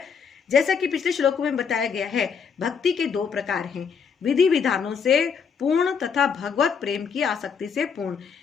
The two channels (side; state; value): right; quieter; 6.3 dB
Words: जैसा कि पिछले श्लोकों में बताया गया है, भक्ति के दो प्रकार हैं, विधि विधानों से पूर्ण तथा भगवत प्रेम की आसक्ति से पूर्ण।